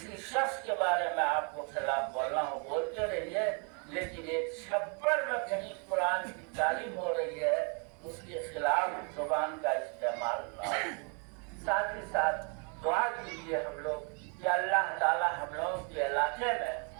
شخص کے بارے میں آپ کو خلاف بولنا ہو بولتے رہیے، لیکن ایک چھپر میں کہیں قرآن کی تعلیم ہو رہی ہے اس کے خلاف زبان کا استعمال نہ ہو۔ ساتھ ہی ساتھ دعا کیجیے ہم لوگ کہ اللہ تعالی ہم لوگوں کے علاقے میں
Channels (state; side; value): quieter; left; 37.3 dB